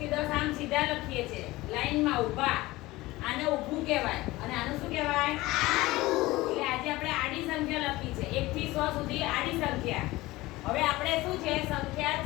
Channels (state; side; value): quieter; right; 19.3 dB